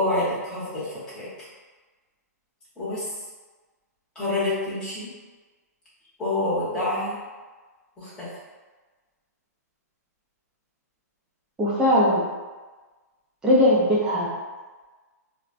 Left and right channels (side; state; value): both; normal; correlation -0.20